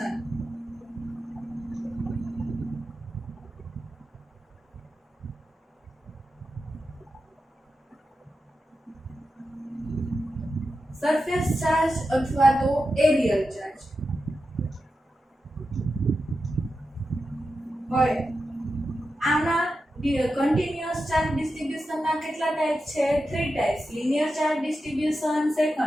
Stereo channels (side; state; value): both; normal; correlation 0.90